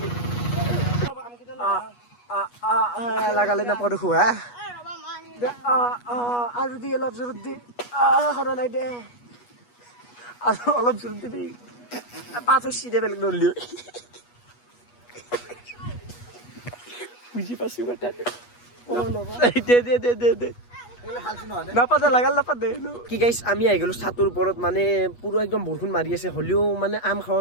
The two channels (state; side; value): late; right; 8.3 ms